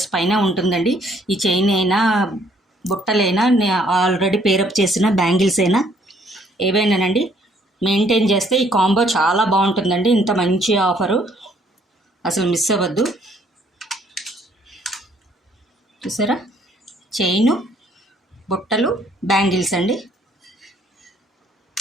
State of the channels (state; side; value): normal; both; correlation 0.64